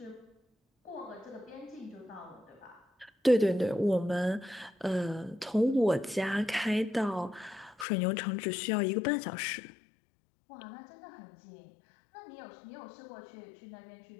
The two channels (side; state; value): right; drops out; at 7.9 s